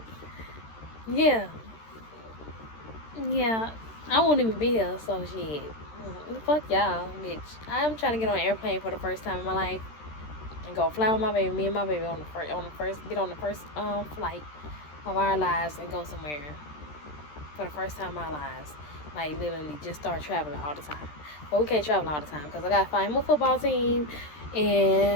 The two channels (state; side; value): late; right; 13 ms